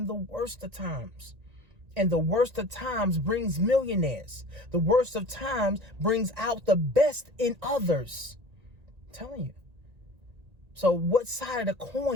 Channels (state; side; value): late; left; 1.9 ms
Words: the worst of times. And the worst of times brings millionaires. The worst of times brings out the best in others. I'm telling you. So what side of the